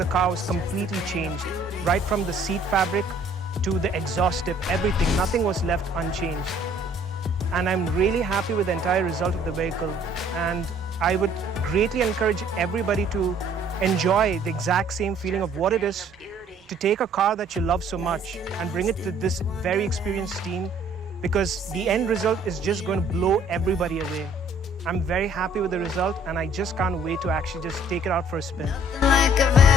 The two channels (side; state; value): both; normal; correlation 0.58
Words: car was completely changed. Right from the seat fabric to the exhaust tip, everything, nothing was left unchanged. And I'm really happy with the entire result of the vehicle. And I would greatly encourage everybody to enjoy the exact same feeling of what it is to take a car that you love so much and bring it to this very experienced team, because the end result is just going to blow everybody away. I'm very happy with the result and I just can't wait to actually just take it out for a spin. Like I've